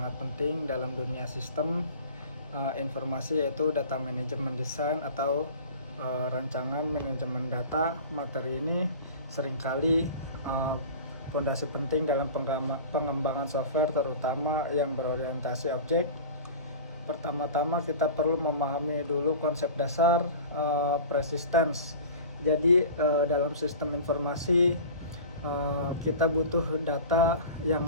penting dalam dunia sistem informasi, yaitu data manajemen design atau rancangan manajemen data. Materi ini seringkali fondasi penting dalam pengembangan software, terutama yang berorientasi objek. Pertama-tama kita perlu memahami dulu konsep dasar persistence. Jadi dalam sistem informasi kita butuh data yang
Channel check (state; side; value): inverted; both; correlation -0.38